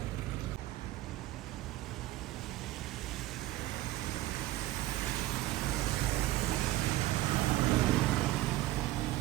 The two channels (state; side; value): quieter; left; 16.4 dB